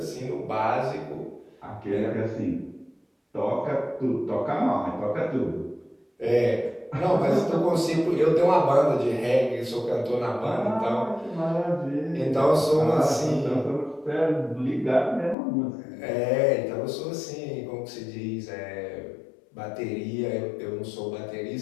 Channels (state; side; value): drops out; right; at 15.4 s